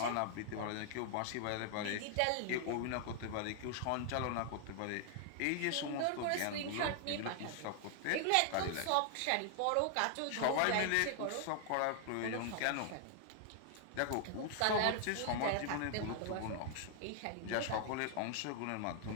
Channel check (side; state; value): both; different; correlation 0.00